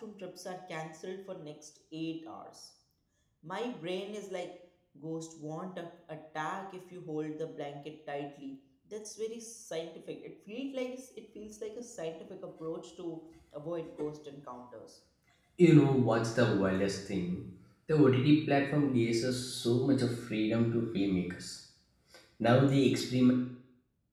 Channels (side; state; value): both; identical; correlation 1.00